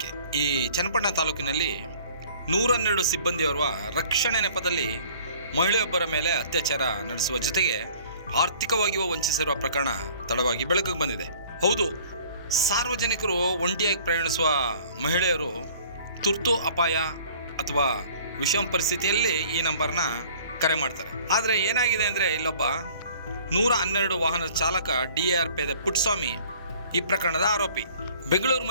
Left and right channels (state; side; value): inverted; both; correlation -0.52